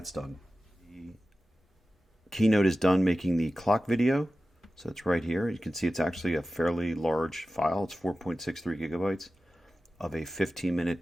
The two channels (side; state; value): both; normal; correlation 0.94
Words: done. The Keynote is done making the clock video. So it's right here. You can see it's actually a fairly large file. It's 4.63 gigabytes of a